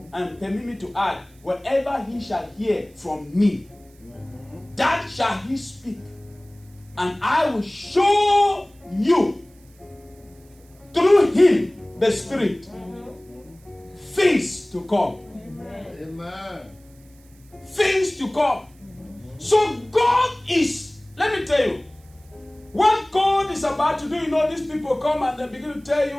And permit me to add, whatever he shall hear from me, that shall he speak. And I will show you through him, the Spirit, things to come. Amen. Things to come. So God is, let me tell you, what God is about to do, these people come and they begin to tell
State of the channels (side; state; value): right; noise; hiss, 30 dB below the sound